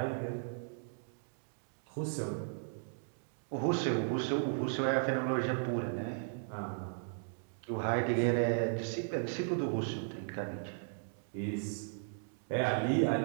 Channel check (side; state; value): left; silent; digital silence